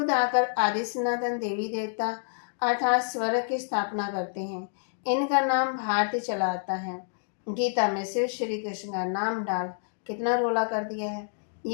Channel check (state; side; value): silent; right; digital silence